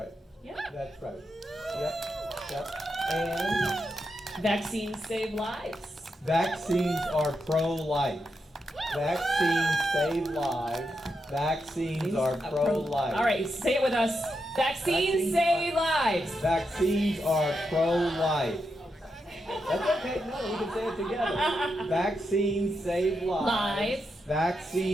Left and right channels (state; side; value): normal; both; correlation 0.85